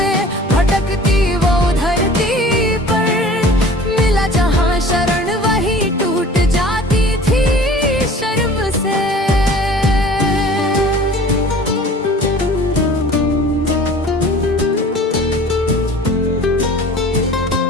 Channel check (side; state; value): both; normal; correlation 0.45